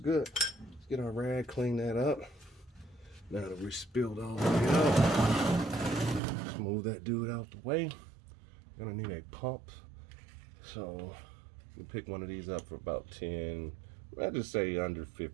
Let's get our rag, clean that up. Now that we spilled all the way out, smooth that dude out the way. Gonna need a pump. So you pick one of these up for about 10, I'd just say under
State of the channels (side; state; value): left; drops out; at 6.2 s